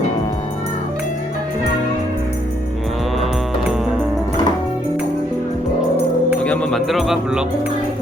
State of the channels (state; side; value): normal; both; correlation 0.71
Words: 여기 한번 만들어봐. 불러.